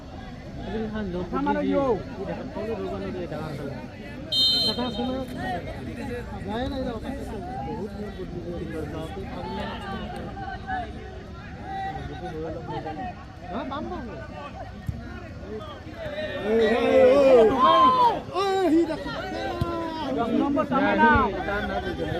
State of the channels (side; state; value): both; identical; correlation 1.00